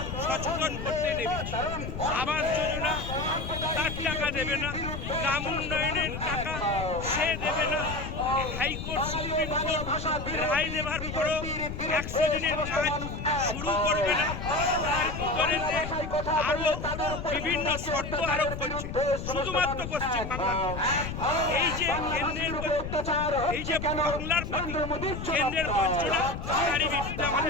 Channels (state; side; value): noise; left; rumble, 6 dB below the sound